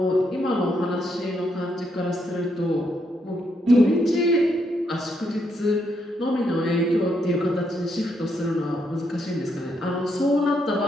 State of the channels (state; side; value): normal; both; correlation 0.77